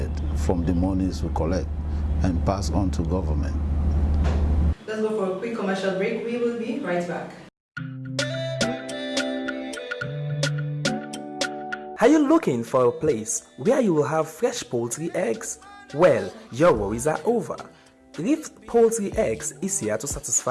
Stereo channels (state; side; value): identical; both; correlation 1.00